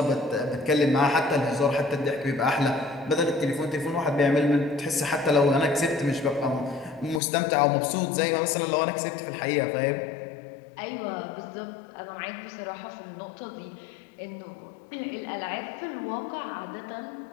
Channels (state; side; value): drops out; right; at 7.2 s